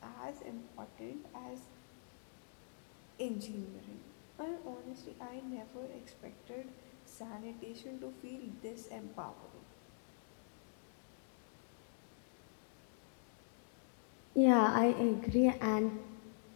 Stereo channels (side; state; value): right; silent; digital silence